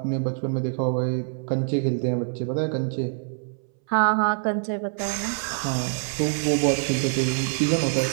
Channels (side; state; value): left; silent; 62 dB below the other